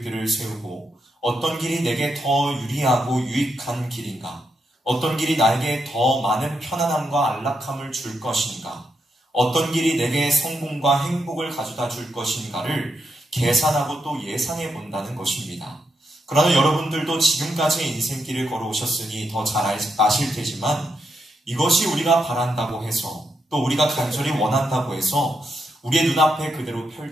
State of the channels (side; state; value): both; normal; correlation 0.82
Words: 세우고 어떤 길이 내게 더 유리하고 유익한 길인가? 어떤 길이 나에게 더 많은 편안함과 안락함을 줄 것인가? 어떤 길이 내게 성공과 행복을 가져다 줄 것인가를 계산하고 또 예상해 본다는 것입니다. 그러나 여러분들도 지금까지의 인생길을 걸어오셨으니 더 잘 아실 테지만 이것이 우리가 바란다고 해서 또 우리가 간절히 원한다고 해서 우리의 눈앞에 그대로